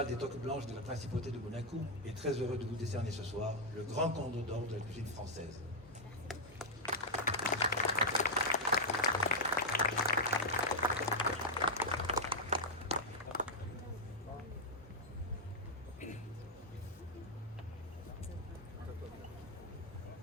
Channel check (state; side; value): normal; both; correlation -0.02